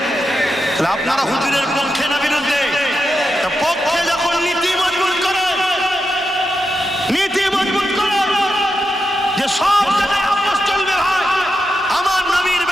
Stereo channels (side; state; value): both; normal; correlation 0.87